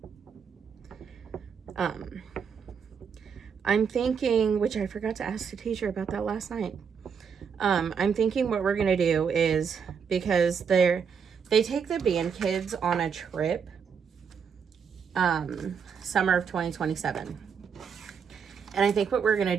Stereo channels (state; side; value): quieter; left; 6.6 dB